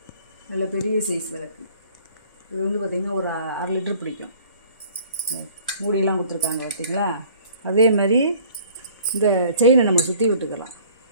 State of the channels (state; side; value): inverted; both; correlation -0.52